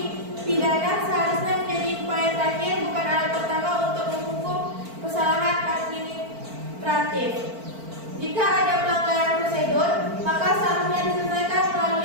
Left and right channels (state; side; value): late; left; 4.5 ms